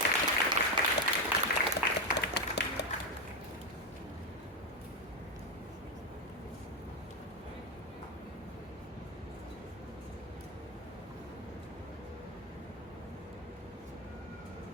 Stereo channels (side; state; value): both; normal; correlation 0.08